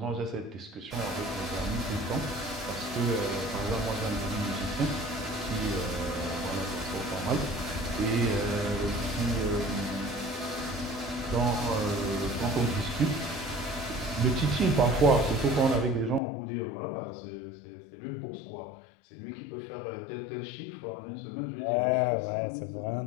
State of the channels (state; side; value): drops out; right; at 16.2 s